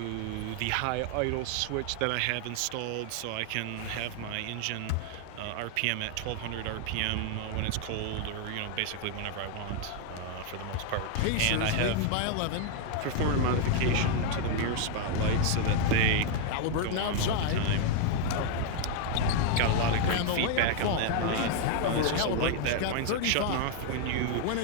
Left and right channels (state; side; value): different; both; correlation 0.00